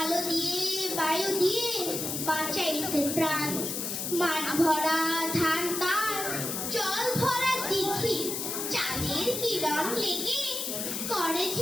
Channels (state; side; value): noise; left; hiss, 3 dB below the sound